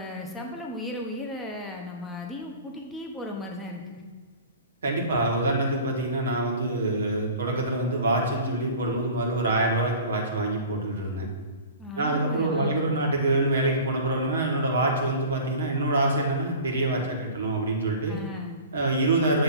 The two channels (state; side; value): inverted; both; correlation -0.40